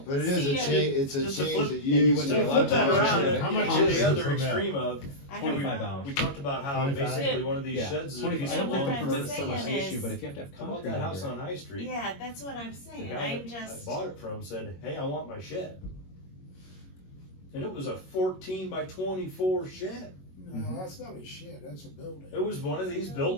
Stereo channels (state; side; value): late; right; 21 ms